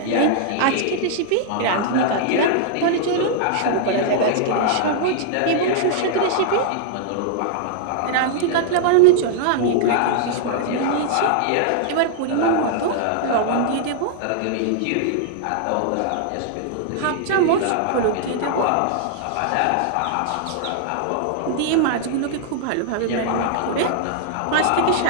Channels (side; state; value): both; different; correlation -0.01